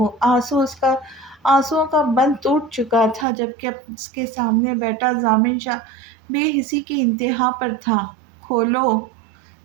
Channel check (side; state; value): left; drops out; at 3.2 s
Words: آنسوؤں کا بند ٹوٹ چکا تھا، جبکہ اس کے سامنے بیٹھا ضامن شاہ بے حسی کی انتہا پر تھا۔ کھولو!